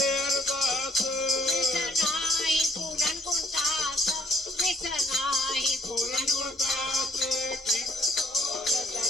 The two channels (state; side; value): normal; both; correlation 0.63